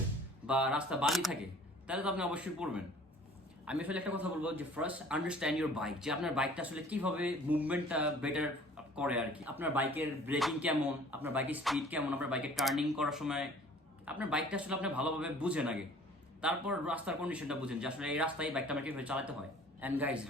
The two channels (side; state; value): both; normal; correlation 0.50